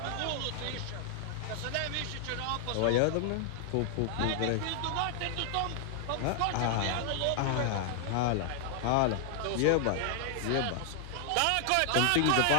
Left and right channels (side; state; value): both; different; correlation 0.00